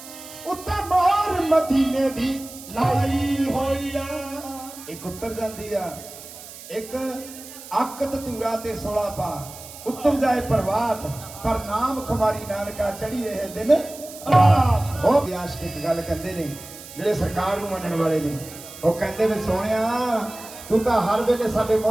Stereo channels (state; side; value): noise; right; hiss, 15 dB below the sound